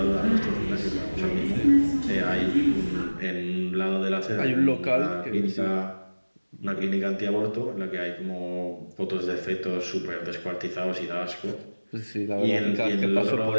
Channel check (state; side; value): inverted; both; correlation -1.00